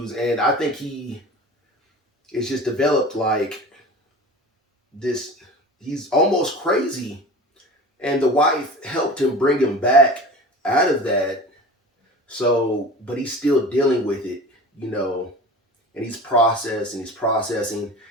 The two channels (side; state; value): both; normal; correlation 0.37